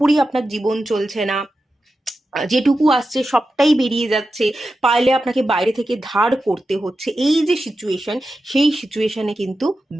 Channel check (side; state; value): both; normal; correlation 0.91